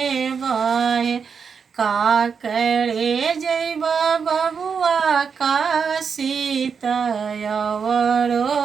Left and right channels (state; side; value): quieter; left; 6.1 dB